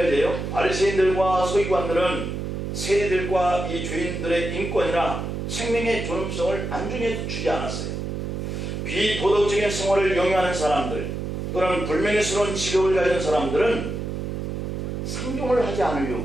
바리새인들과 서기관들은 세리들과 이 죄인들의 인권이나 생명의 존엄성을 안중에 주지 않았어요. 비도덕적인 생활을 영위하는 사람들 또는 불명예스러운 직업을 가진 사람들은 상종을 하지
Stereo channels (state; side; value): noise; right; hum, 4 dB below the sound